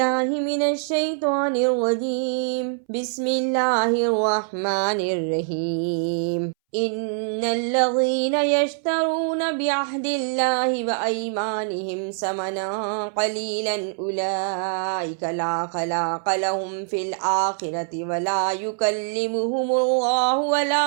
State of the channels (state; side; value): silent; left; 63 dB below the other